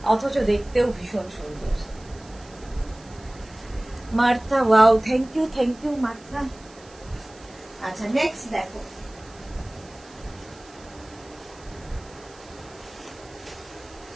অথচ দেখতেও ভীষণ সুন্দর। Martha, wow, thank you Martha. আচ্ছা, নেক্সট দেখো,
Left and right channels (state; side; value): noise; right; hiss, 24 dB below the sound